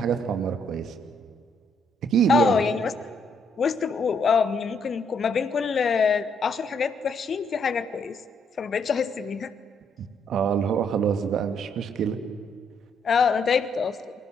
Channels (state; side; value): normal; both; correlation 0.72